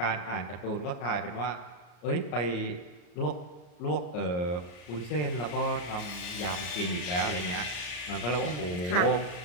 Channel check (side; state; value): right; late; 34 ms